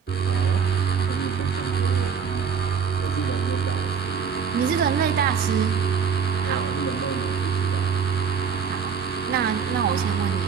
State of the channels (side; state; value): left; quieter; 6.5 dB